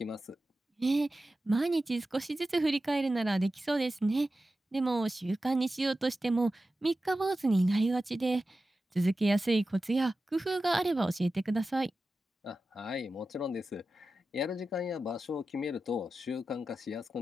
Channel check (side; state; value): both; normal; correlation 0.93